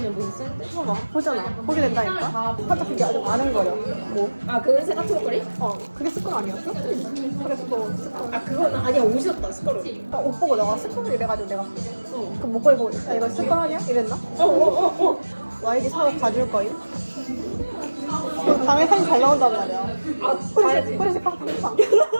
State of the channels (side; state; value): both; inverted; correlation -1.00